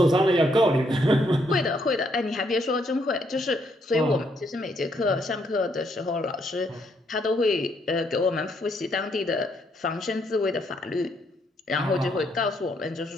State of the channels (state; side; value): normal; both; correlation 0.73